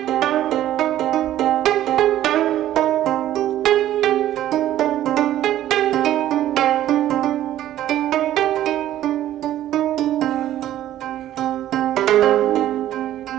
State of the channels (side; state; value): left; quieter; 12.8 dB